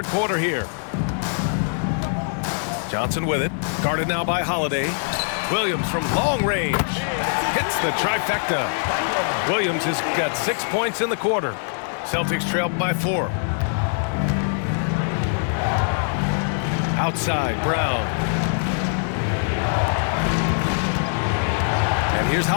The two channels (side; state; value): right; silent; digital silence